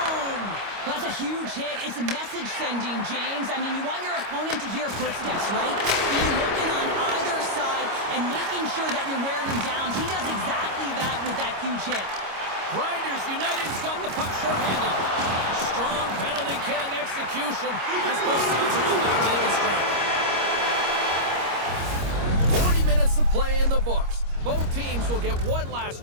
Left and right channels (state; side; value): late; left; 25 ms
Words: That's a huge hit. It's a message sending, James. I mean, you want your opponent to hear footsteps, right? Be looking on either side and making sure that you're wearing them down. He does exactly that with that huge hit. Grinders United's got the puck shorthanded. Strong penalty-killing execution as both sides are now back to even strength. 40 minutes of play in the books. Both teams will get one last